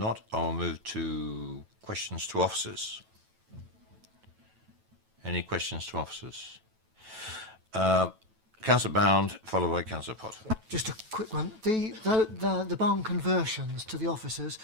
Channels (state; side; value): late; left; 9.1 ms